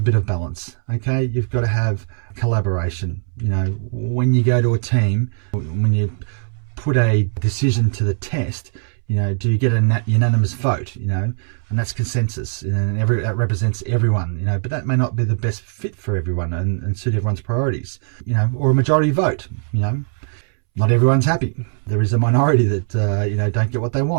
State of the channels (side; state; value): left; silent; 65 dB below the other